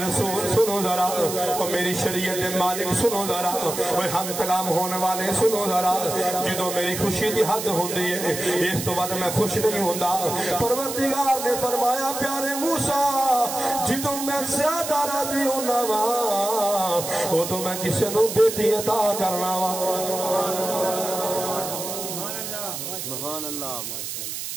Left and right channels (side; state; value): right; noise; hiss, 6 dB below the sound